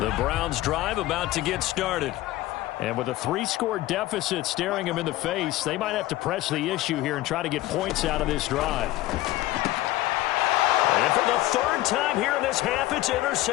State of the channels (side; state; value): right; quieter; 16.7 dB